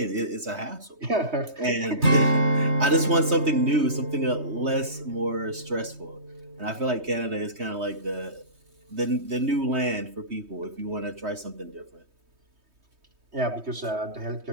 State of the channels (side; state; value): left; late; 3.2 ms